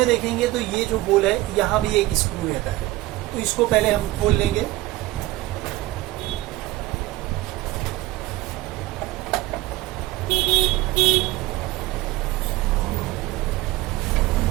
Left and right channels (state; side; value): quieter; left; 18.1 dB